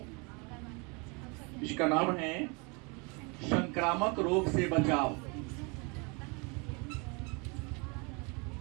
इसका नाम है संक्रामक रोग से बचाव।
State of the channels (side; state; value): left; quieter; 31.0 dB